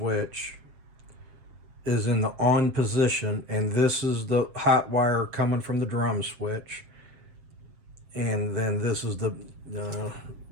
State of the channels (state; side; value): late; left; 7.5 ms